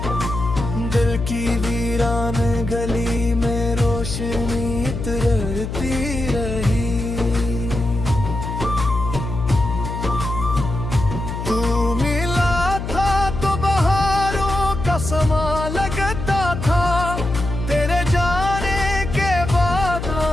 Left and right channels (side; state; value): left; noise; hum, 5 dB below the sound